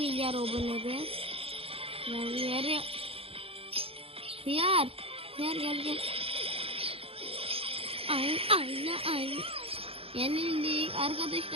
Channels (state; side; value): late; left; 0.27 ms